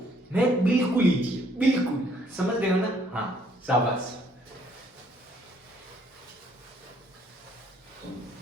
मैथ बिल्कुल इजी है, बिल्कुल। समझ रहे हो ना? हाँ, शाबाश।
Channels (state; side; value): normal; both; correlation 0.66